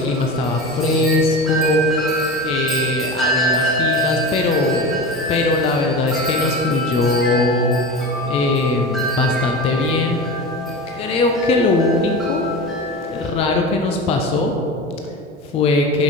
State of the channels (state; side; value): normal; both; correlation 0.28